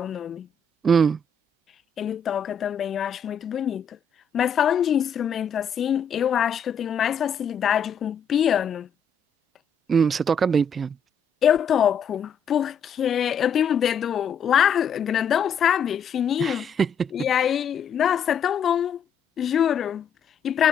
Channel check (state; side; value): quieter; right; 4.9 dB